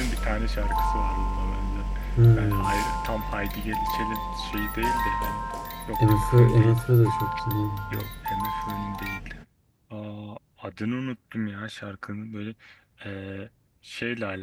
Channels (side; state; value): both; identical; correlation 1.00